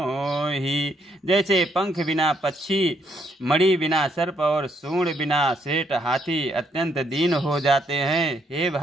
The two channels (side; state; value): both; normal; correlation 0.73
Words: जैसे पंख बिना पक्षी, मणि बिना सर्प और सूंड बिना सेठ हाथी अत्यंत दीन हो जाते हैं। हे